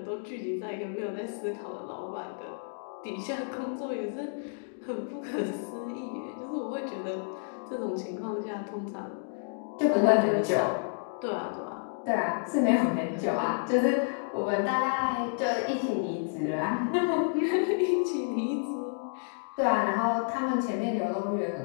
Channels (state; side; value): silent; right; digital silence